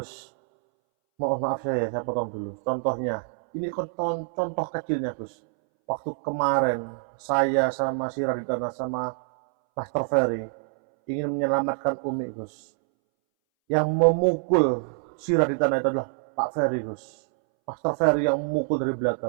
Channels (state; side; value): silent; left; 61 dB below the other